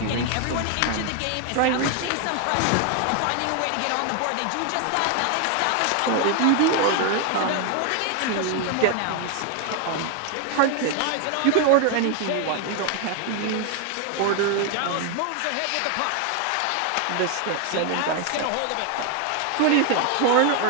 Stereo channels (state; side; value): different; both; correlation 0.00